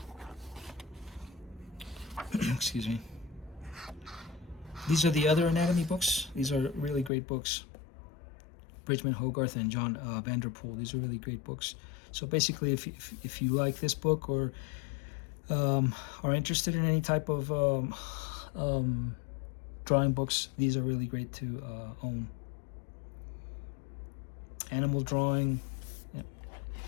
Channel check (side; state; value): right; drops out; at 7.1 s